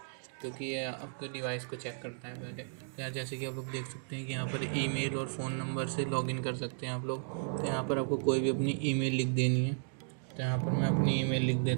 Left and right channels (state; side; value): silent; left; digital silence